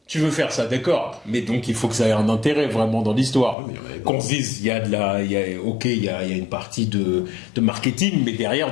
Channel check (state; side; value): drops out; right; at 3.6 s